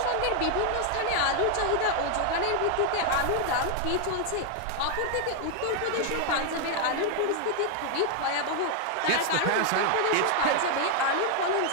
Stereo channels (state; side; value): different; both; correlation 0.00